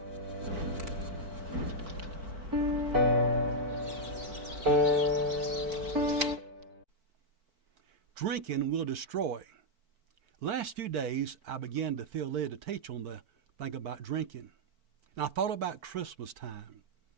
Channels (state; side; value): late; left; 4.5 ms